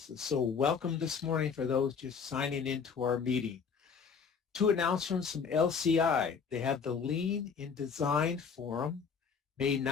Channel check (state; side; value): quieter; right; 6.1 dB